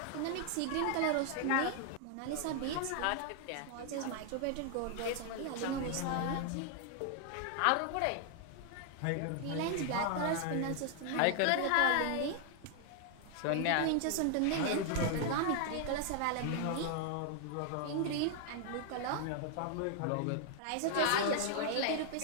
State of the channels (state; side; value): different; both; correlation 0.00